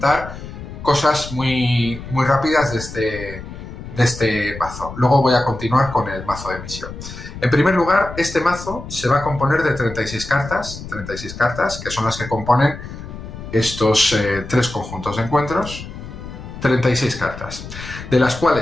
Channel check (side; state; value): left; noise; rumble, 12 dB below the sound